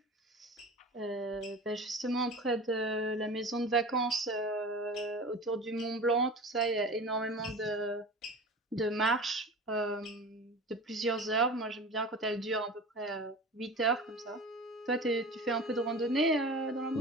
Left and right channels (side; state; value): both; normal; correlation 0.35